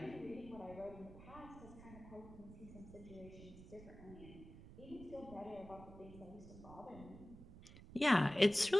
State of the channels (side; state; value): right; noise; rumble, 16 dB below the sound